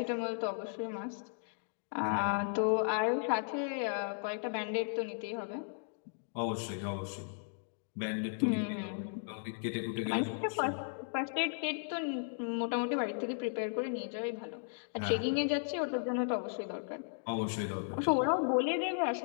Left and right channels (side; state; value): right; silent; digital silence